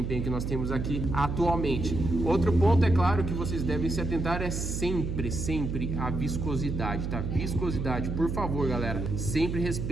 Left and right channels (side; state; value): right; noise; hum, 3 dB below the sound